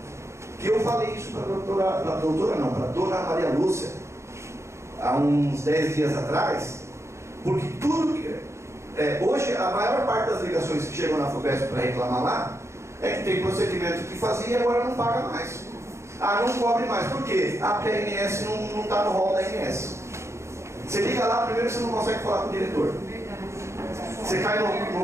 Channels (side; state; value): left; late; 0.14 ms